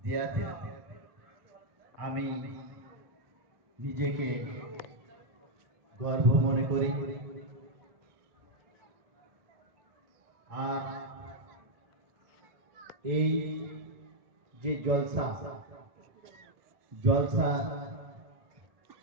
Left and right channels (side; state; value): left; late; 1.3 ms